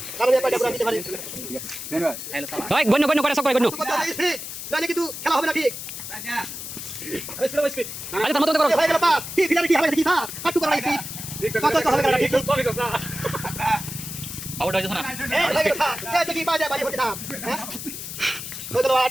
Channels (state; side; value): noise; left; hiss, 8 dB below the sound